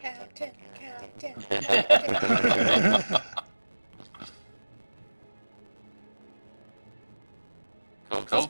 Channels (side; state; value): both; inverted; correlation -1.00